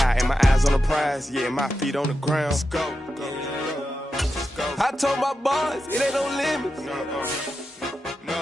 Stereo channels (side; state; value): both; normal; correlation 0.89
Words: and my eyes on the prize. Yeah, my feet on the ground. Let's go. I told my boys it ain't no limits.